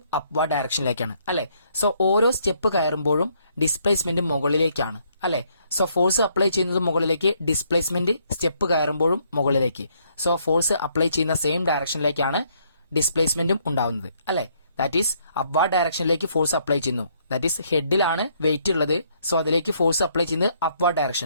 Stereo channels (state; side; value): inverted; both; correlation -0.69